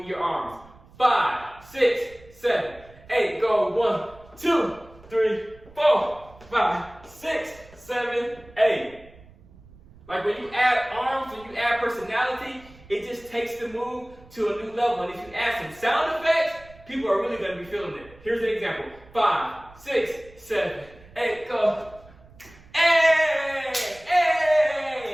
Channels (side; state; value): right; noise; rumble, 24 dB below the sound